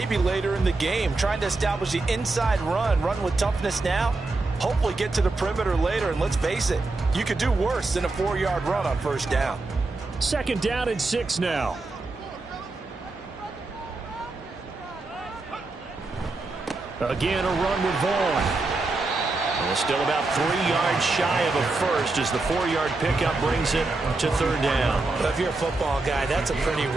later in the game, trying to establish the inside run with toughness now, hopefully get to the perimeter later. And let's face it, you could do worse than a 4-yard run on 1st down. 2nd down and 6 now. Again, a run with Vaughn. Well, still about 3 yards shy of a first as the 4-yard pickup brings it to 3rd down. Well, if you're a football guy, that's a pretty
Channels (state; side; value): quieter; left; 3.4 dB